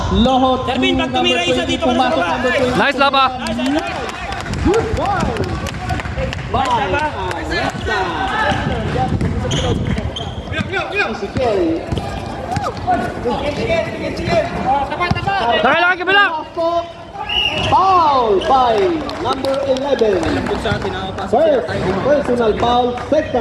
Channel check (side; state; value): both; identical; correlation 1.00